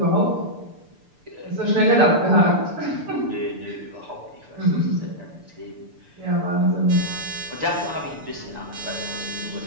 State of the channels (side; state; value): left; late; 6.8 ms